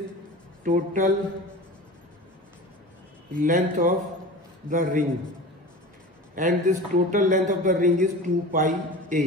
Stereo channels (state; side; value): normal; both; correlation 0.34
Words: total length of the ring, and this total length of the ring is 2 pi